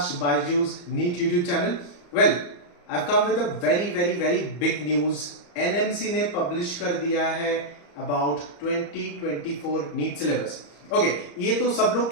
Baiju's NEET YouTube channel. Well, I've come with a very big news. NMC ने publish कर दिया है about 2024 NEET syllabus. Okay, ये तो सब लोग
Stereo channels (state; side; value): late; right; 34 ms